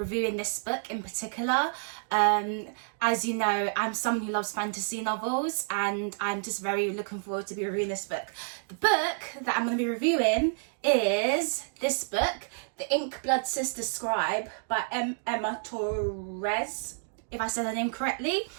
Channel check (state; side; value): silent; left; digital silence